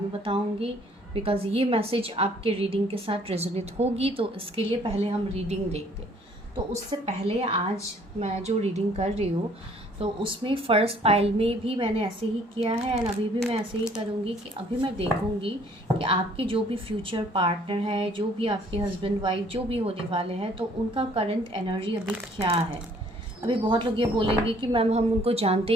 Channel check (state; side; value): normal; both; correlation 0.60